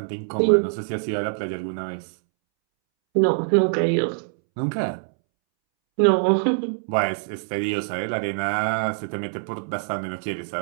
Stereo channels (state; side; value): silent; left; 63 dB below the other